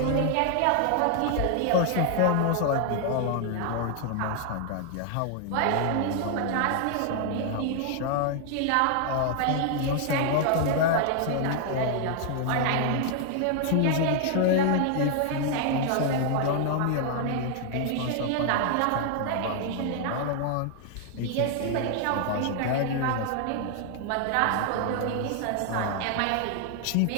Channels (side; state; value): both; different; correlation 0.00